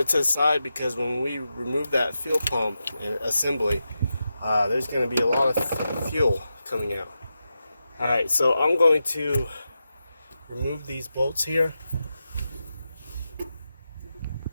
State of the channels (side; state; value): both; inverted; correlation -0.89